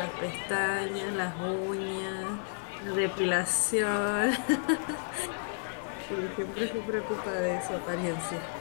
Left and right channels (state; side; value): silent; right; 57 dB below the other